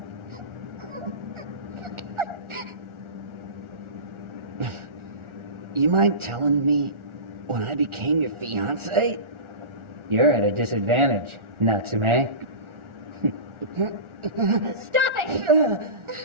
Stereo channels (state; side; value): late; left; 1.4 ms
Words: You mind telling me when I became your fiancé? You're at a disadvantage, Natsume. Stop it!